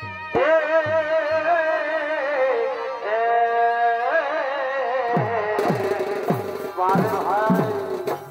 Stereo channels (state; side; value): identical; both; correlation 1.00